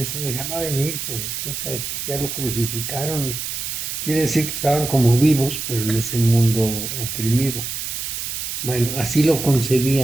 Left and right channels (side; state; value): right; noise; hiss, 5 dB below the sound